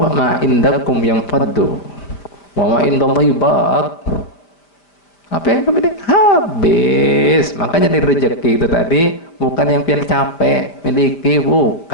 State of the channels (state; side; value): late; right; 5.2 ms